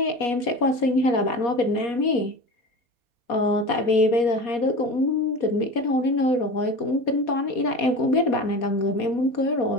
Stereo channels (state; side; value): late; right; 4.2 ms